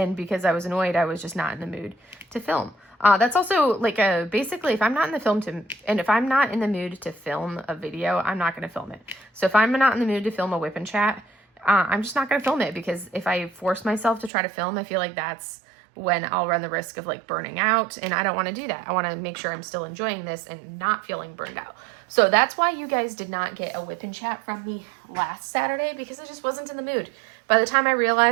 because I was annoyed, I was just not in the mood to film. That's also like basically if I'm not in the mood to film a video, I'm not going to film it. So if I'm not in the mood to film a whip and chat, I'm just not going to film it, because if I force myself to try to film, I feel like that's when I'll run the risk of like burning out, and I don't want to do that. I want to make sure I'm still enjoying this and not feeling burned out. So that's why you guys did not get a whip and chat from me last Saturday, because I just wasn't in the mood. By the time I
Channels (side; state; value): left; drops out; at 14.3 s